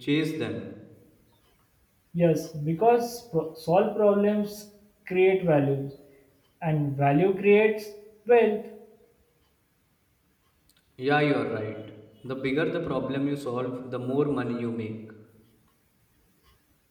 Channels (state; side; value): identical; both; correlation 1.00